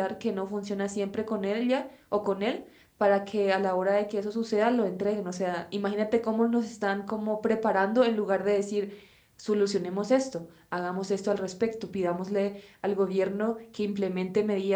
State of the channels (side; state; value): both; identical; correlation 1.00